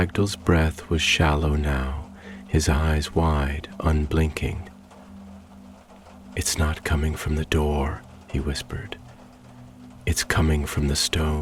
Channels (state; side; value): identical; both; correlation 1.00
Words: breath was shallow now, his eyes wide, unblinking. "It's not coming from the door," he whispered. "It's coming from the